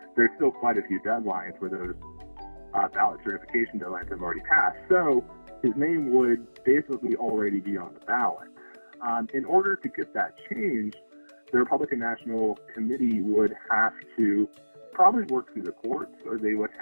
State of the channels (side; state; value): both; inverted; correlation -1.00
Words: There's still quite a few deadlines where those ballot certification deadlines have already passed. So his name would basically already be on the ballot. In order to get that changed, the Republican National Committee would have to probably work through the courts, or they would